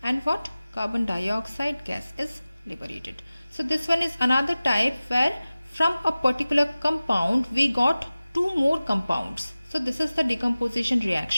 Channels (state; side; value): inverted; both; correlation -0.97